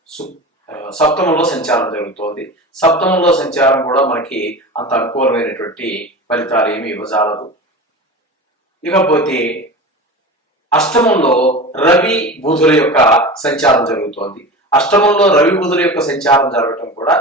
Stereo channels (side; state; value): both; normal; correlation 0.31